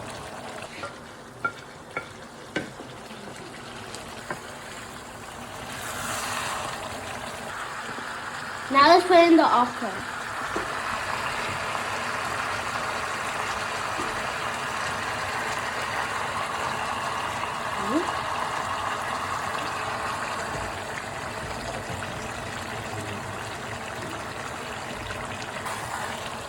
Now let's put in the okra.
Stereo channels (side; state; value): both; identical; correlation 1.00